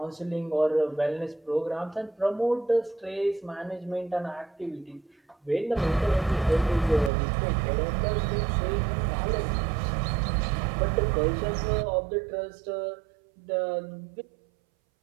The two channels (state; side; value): drops out; left; at 7.1 s